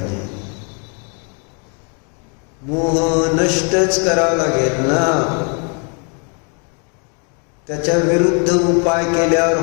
मोह नष्टच करावा लागेल ना. त्याच्या विरुद्ध उपाय केल्यावर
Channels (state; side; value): quieter; right; 37.6 dB